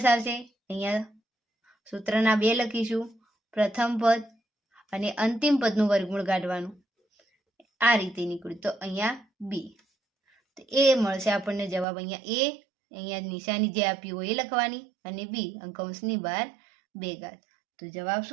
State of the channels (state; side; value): drops out; left; at 11.9 s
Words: આવશે, અહીંયા સૂત્રના 2 લખીશું, પ્રથમ પદ અને અંતિમ પદનું વર્ગમૂળ કાઢવાનું. આ રીતે નીકળ્યું તો અહીંયા b. તો એ મળશે આપણને જવાબ. અહીંયા નિશાની જે આપી હોય એ લખવાની અને b કૌંસની બહાર 2 ઘાત. તો જવાબ